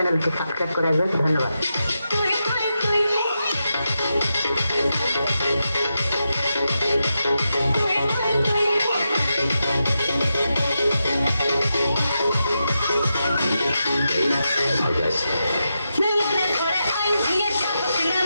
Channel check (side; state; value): both; inverted; correlation -0.88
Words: সাবস্ক্রাইব করে রাখবেন। ধন্যবাদ।